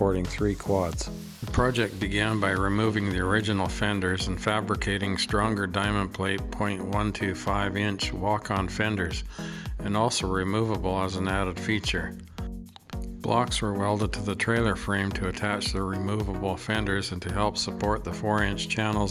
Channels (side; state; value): both; identical; correlation 1.00